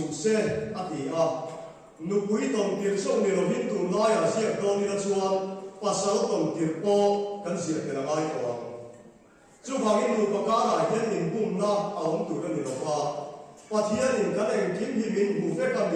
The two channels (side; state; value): both; identical; correlation 1.00